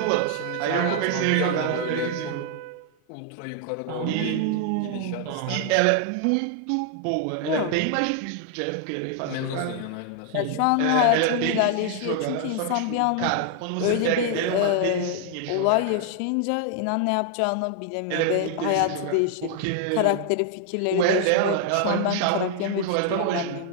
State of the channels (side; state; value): both; different; correlation 0.00